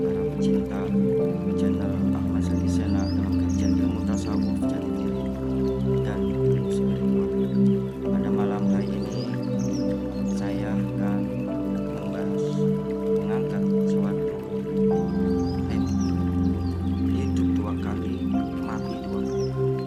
para pecinta channel Ahmad Zaki Sena dalam kajian ilmu tasawuf jati diri dan ilmu spiritual. Pada malam hari ini saya akan mengangkat suatu tema, hidup dua kali, mati dua kali.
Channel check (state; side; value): identical; both; correlation 1.00